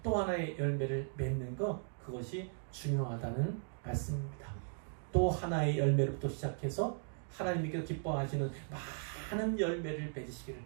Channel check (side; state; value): left; silent; digital silence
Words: 또 하나의 열매를 맺는 것, 그것이 중요하다는 말씀입니다. 또 하나의 열매로부터 시작해서 하나님께서 기뻐하시는 많은 열매를 맺으시기를